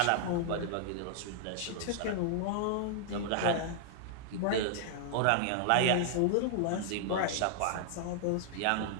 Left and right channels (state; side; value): different; both; correlation -0.01